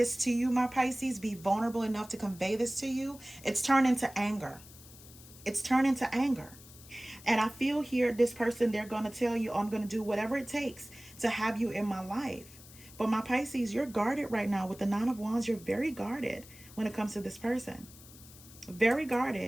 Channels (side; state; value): left; noise; hiss, 20 dB below the sound